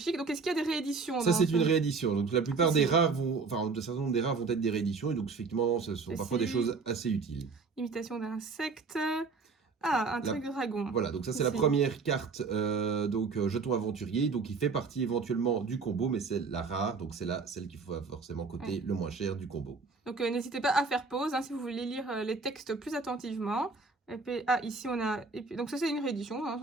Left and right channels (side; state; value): left; quieter; 4.6 dB